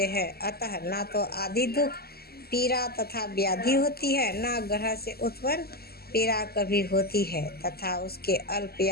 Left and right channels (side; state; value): right; late; 0.45 ms